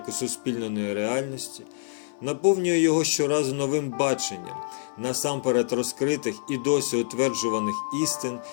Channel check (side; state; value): right; silent; digital silence